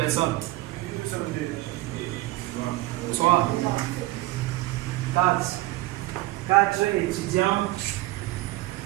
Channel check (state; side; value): quieter; left; 18.4 dB